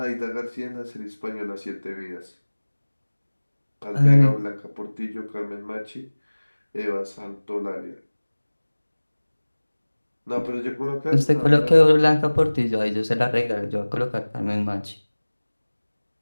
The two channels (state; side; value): inverted; both; correlation -1.00